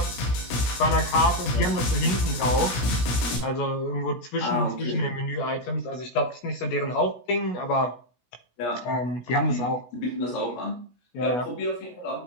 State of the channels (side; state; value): right; late; 16 ms